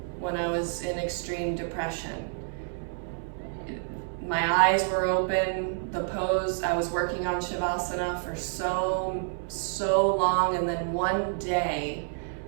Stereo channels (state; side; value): silent; left; 59 dB below the other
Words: when I was in extreme depression. My eyes were open, the pose, I was working on shavasana for so long, and then one day